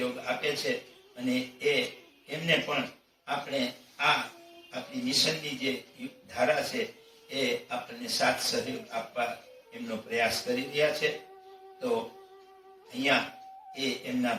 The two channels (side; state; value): both; identical; correlation 1.00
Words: આપે છે અને એમને પણ આપણે આપણી મિશનની જે ધારા છે એ આપણને સાથ સહયોગ આપવા એમનો પ્રયાસ કરી રહ્યા છે. તો અહીંયા એ એમના